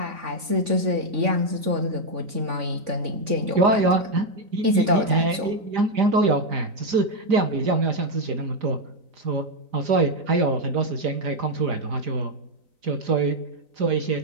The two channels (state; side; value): late; left; 3.5 ms